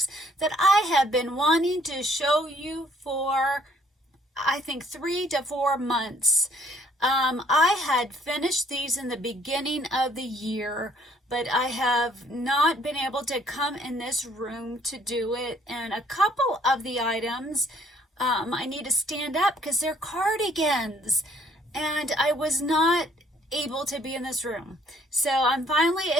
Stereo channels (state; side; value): normal; both; correlation 0.62